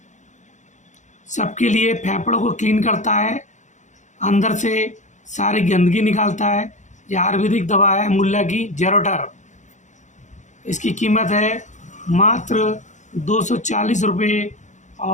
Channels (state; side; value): late; right; 0.35 ms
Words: सबके लिए फेफड़ों को क्लीन करता है, अंदर से सारी गंदगी निकालता है। यह आयुर्वेदिक दवा है मुल्ला की जेरोटर। इसकी कीमत है मात्र 240 रुपये